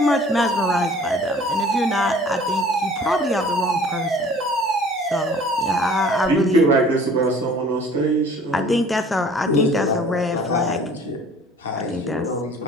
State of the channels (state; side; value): normal; both; correlation 0.50